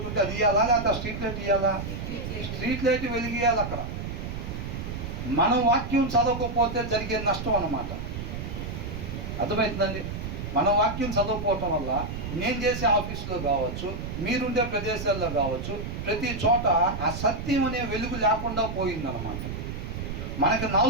ఉంటే అది ఇవ్వాలా, లేకపోతే ఆ స్ట్రీట్ లైట్ ఇవ్వాలా? స్ట్రీట్ లైట్ వెలిగియాలి అక్కడ. మనం వాక్యం చదవకపోతే జరిగే నష్టం అన్నమాట. అర్థమవుతుందండి? మనం వాక్యం చదవకపోవటం వల్ల నేను చేసే ఆఫీసులో కావచ్చు, మీరుండే ప్రదేశాల్లో కావచ్చు, ప్రతి చోట ఆ సత్యం అనే వెలుగు లేకుండా పోయిందన్నమాట. మనకి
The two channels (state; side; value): noise; right; rumble, 6 dB below the sound